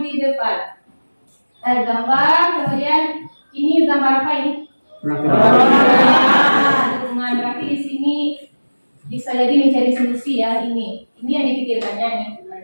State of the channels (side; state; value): both; inverted; correlation -1.00